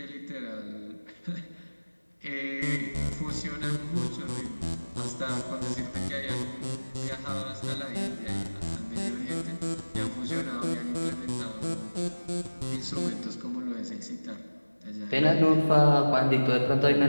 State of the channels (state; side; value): inverted; both; correlation -1.00